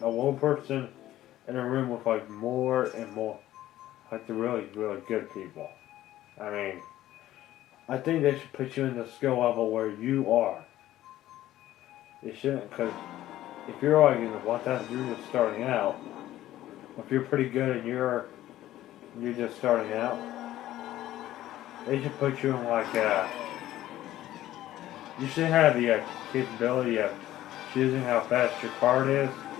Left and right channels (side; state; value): right; quieter; 14.1 dB